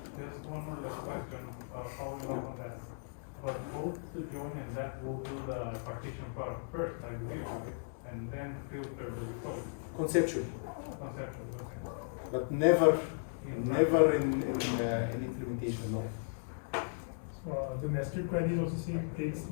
Just one more last question, following up on that. But both the join and that will do the partition product first, like we do, right? And then filter the result. Conceptually, Conceptually, okay. but never In in implementation. No. The nested queries also takes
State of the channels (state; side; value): silent; right; digital silence